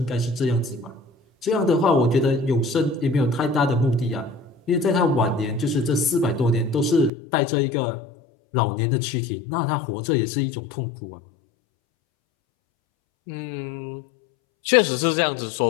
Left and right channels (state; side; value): drops out; right; at 7.1 s